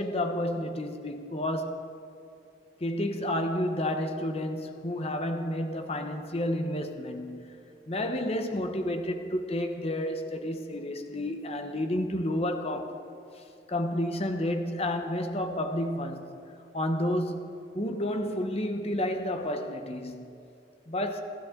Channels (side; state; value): both; normal; correlation 0.56